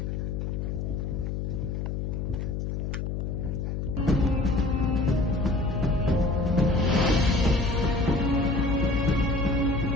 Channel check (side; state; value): left; noise; hum, 2 dB below the sound